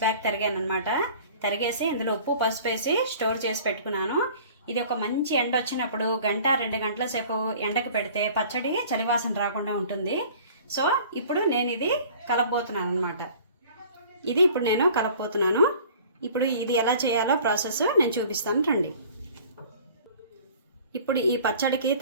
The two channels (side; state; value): both; inverted; correlation -0.48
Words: తరిగాను అనమాట. తరిగేసి ఇందులో ఉప్పు పసుపు వేసి స్టోర్ చేసి పెట్టుకున్నాను. ఇది ఒక మంచి ఎండ వచ్చినప్పుడు 1-2 గంటల సేపు ఎండకు పెడితే పచ్చడి చలివాసన రాకుండా ఉంటుంది. సో ఇప్పుడు నేను ఇది కలపబోతున్నాను అనమాట. ఇది ఇప్పుడు నేను కలపబోతున్నాను. ఇప్పుడు ఇది ఎలా చేయాలో ప్రాసెస్ నేను చూపిస్తాను రండి. ఇప్పుడు ఈ పచ్చడికి